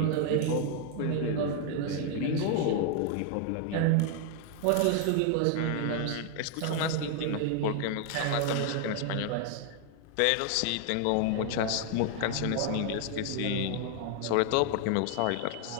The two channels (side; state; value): both; different; correlation 0.00